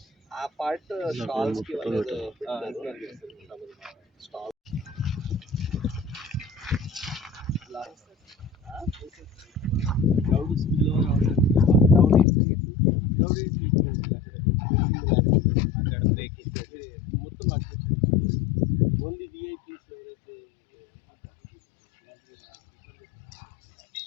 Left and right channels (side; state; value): right; drops out; at 12.2 s